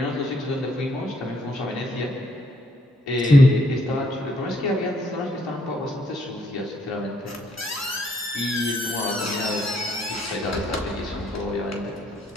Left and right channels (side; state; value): both; normal; correlation 0.70